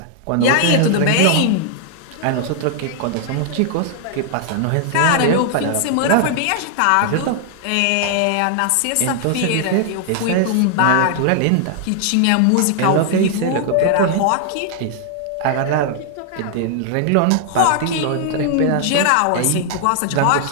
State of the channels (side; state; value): both; different; correlation 0.00